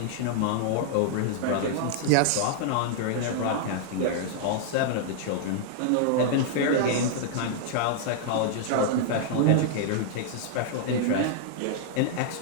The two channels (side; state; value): both; different; correlation -0.01